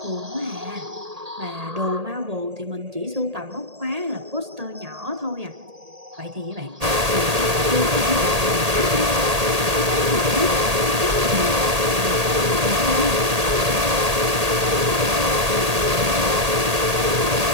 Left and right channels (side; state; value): left; late; 1.8 ms